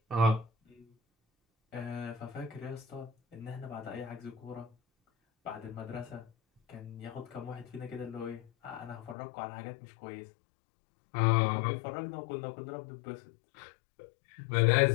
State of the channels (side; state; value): right; drops out; at 9.2 s